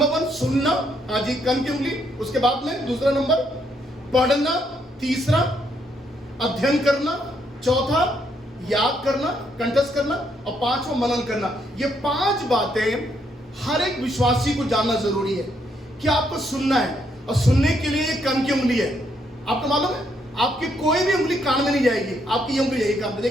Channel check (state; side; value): normal; both; correlation 0.74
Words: 1 सुनना, हाँ जी, कान की उंगली। उसके बाद में दूसरा नंबर पढ़ना, तीसरा अध्ययन करना, चौथा याद करना, कंठस्थ करना, और 5वां मनन करना। ये 5 बातें हर एक विश्वासी को जानना जरूरी है कि आपको सुनना है, और सुनने के लिए कान की उंगली है। आपको मालूम है आपकी कोई भी उंगली कान में नहीं जाएगी, आपकी ये उंगली जाएगी कान में।